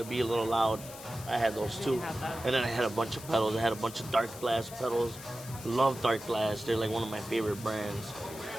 be a little loud, I had those too. And then I had a bunch of pedals. I had a bunch of dark glass pedals. Love dark glass. They're like one of my favorite brands.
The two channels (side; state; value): left; noise; hiss, 14 dB below the sound